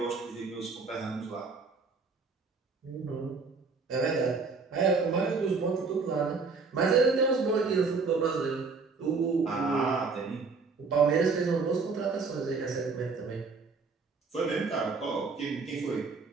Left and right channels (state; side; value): quieter; left; 4.5 dB